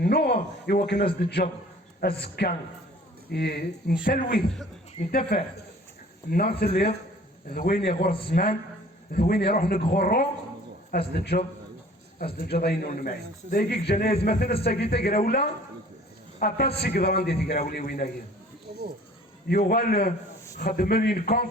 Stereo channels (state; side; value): normal; both; correlation 0.50